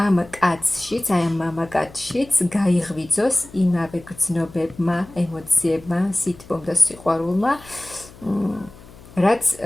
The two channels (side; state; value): left; noise; hum, 21 dB below the sound